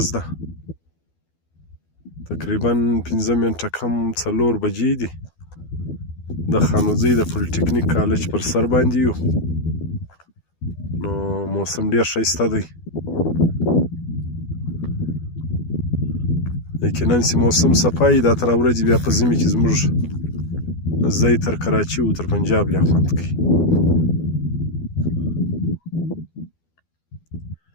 ده. تقریبا 5 منټه کم 4 بجې دي. د خانوزۍ د پولیټیکنیک کالج پر سر باندې یو. نو موسم ډېر ښایسته دی. یقینا چې موسم صفایي دا تر ورځې بیا په ژمي کې زموږ ځای تر کراچي او تر پنجاب لا خوند کوي.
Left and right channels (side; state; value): right; late; 12 ms